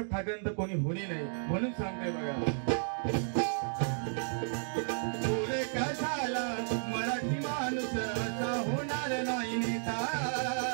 ठाकरेंतर कोणी होणे नाही म्हणून सांगताय बघा. झाला मराठी माणूस असा होणार नाही नेता.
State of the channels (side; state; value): left; silent; digital silence